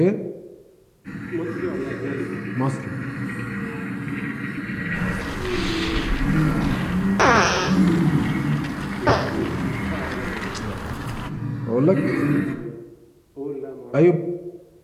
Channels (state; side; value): identical; both; correlation 1.00